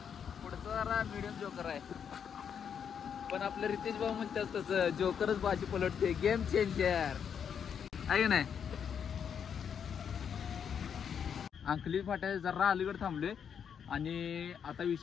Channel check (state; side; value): quieter; right; 7.6 dB